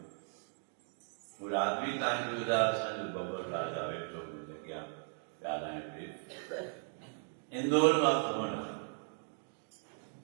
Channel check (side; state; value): left; silent; 53 dB below the other